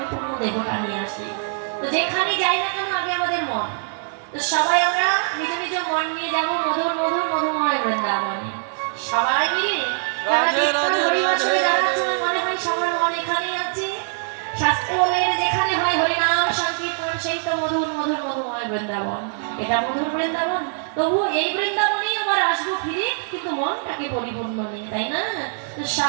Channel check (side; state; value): left; silent; 64 dB below the other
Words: দেহটা নিয়ে আসি। তো যেখানে যাই না কেন আগে আমাদের মন। তো সবাই আমরা নিজ নিজ মন নিয়ে যাবো মধুর মধুর মধুময় বৃন্দাবনে সবাই মিলে। হরিবাসরে যারা আছে আমার মনে হয় সবার মন এখানেই আছে। শাস্ত্রে বলে যেখানে হয় হরিনাম সংকীর্তন সেই তো মধুর মধুর মধুময় বৃন্দাবন। এটা মধুর বৃন্দাবন, তবু এই বৃন্দাবনেই আবার আসবো ফিরে, কিন্তু মনটাকে পরিপূর্ণ নেই, তাই না? তো